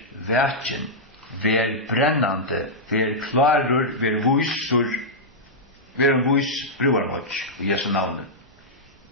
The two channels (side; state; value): both; normal; correlation -0.08